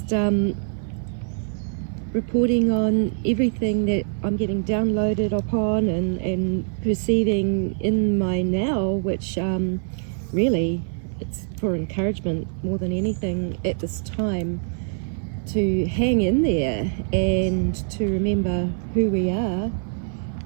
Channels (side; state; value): left; silent; digital silence